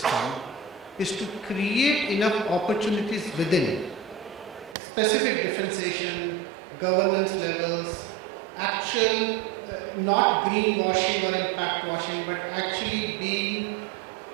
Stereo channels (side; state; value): left; drops out; at 4.8 s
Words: is to create enough opportunities within, specific differentiation, governance levels, actual, not greenwashing or impact washing, but actually being